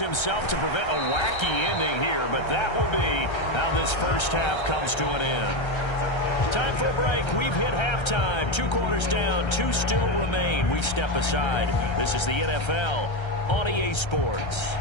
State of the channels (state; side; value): late; right; 1.3 ms